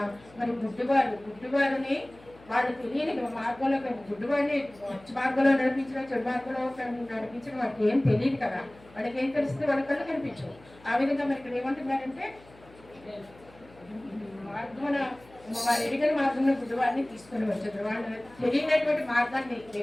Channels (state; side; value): noise; left; hum, 24 dB below the sound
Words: మరి గుడ్డివారిని వాళ్ళు తెలియని మార్గంలో గుడ్డివాడిని మంచి మార్గంలో నడిపించడం, చెడు మార్గంలో నడిపించడం వాళ్ళకి ఏం తెలియదు కదా. వాళ్ళకి ఏం తెలిస్తే వాళ్ళ కళ్ళు కనిపించవు. ఆ విధంగా మరి ఇక్కడ ఏమంటున్నారంటే మార్గమున వారు ఎరిగిన మార్గంలో గుడ్డివాడిని తీసుకొని వచ్చారు. వాళ్ళు తెలియనటువంటి మార్గాన్ని,